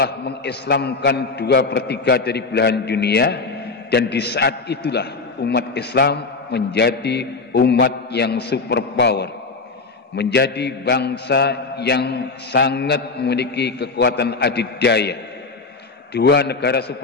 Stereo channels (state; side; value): quieter; right; 4.1 dB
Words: mengislamkan 2/3 dari belahan dunia, dan di saat itulah umat Islam menjadi umat yang superpower, menjadi bangsa yang sangat memiliki kekuatan adidaya. 2 negara